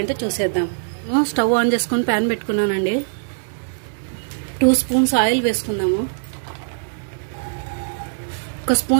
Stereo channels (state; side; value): silent; left; digital silence